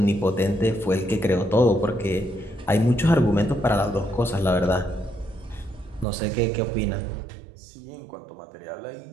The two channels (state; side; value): drops out; left; at 6.1 s